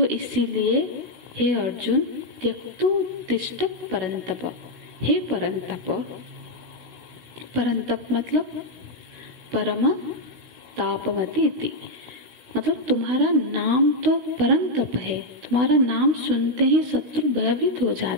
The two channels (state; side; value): late; left; 16 ms